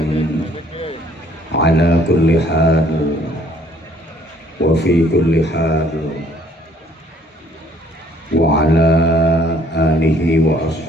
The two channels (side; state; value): both; normal; correlation 0.60